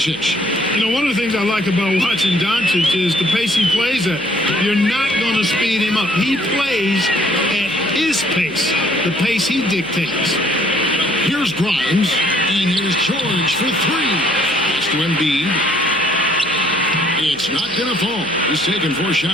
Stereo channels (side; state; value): left; noise; hum, 25 dB below the sound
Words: You know, one of the things I like about watching Doncic is the pace he plays at. You're not going to speed him up. He plays at his pace, the pace he dictates. Here's Grimes, and here's George for three. Pass to Embiid. It's not going to fall. He's taken 4